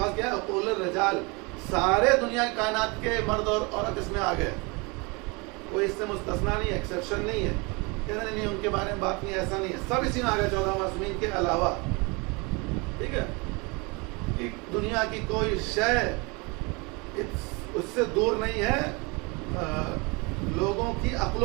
کیا ہے عقول الرجال, سارے دنیا کی کائنات کے مرد اور عورت اس میں آ گئے, کوئی اس سے مستثنا نہیں ہے, ایکسیپشن نہیں ہے. کہتے نہیں ان کے بارے میں بات نہیں, ایسا نہیں ہے, سب اسی میں آ گئے 14 معصومین کے علاوہ, ٹھیک ہے. کہ دنیا کی کوئی شے اس سے دور نہیں ہے لوگوں کی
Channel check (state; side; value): quieter; left; 28.4 dB